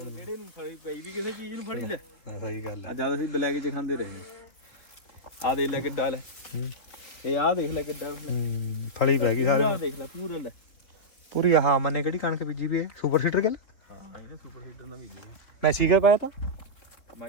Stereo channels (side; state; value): right; late; 3.3 ms